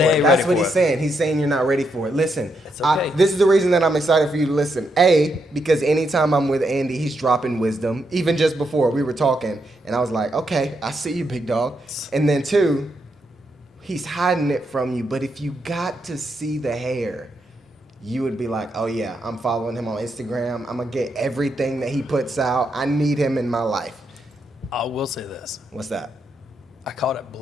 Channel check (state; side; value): normal; both; correlation 0.80